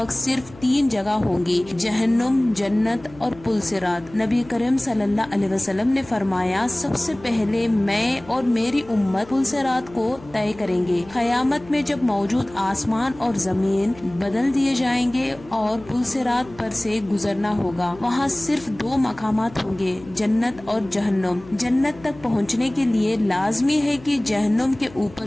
सिर्फ 3 जगह होंगी, जहन्नुम, जन्नत और पुलसिरात। नबी करीम सल्लल्लाहु अलैहि वसल्लम ने फरमाया, सबसे पहले मैं और मेरी उम्मत पुलसिरात को तय करेंगे। क़यामत में जब मौजूद आसमान और जमीन बदल दिए जाएंगे और पुलसिरात पर से गुजरना होगा, वहाँ सिर्फ 2 मकामात होंगे, जन्नत और जहन्नुम। जन्नत तक पहुँचने के लिए लाजमी है कि जहन्नुम के ऊपर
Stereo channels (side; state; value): left; noise; hum, 21 dB below the sound